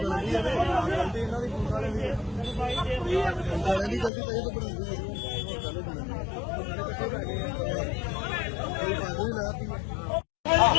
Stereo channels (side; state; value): right; drops out; at 4.1 s